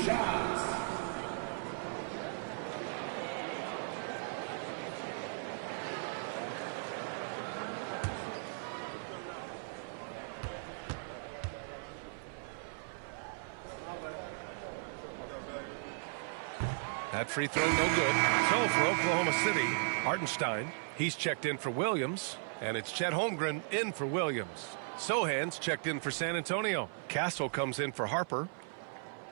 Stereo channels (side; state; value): left; silent; 53 dB below the other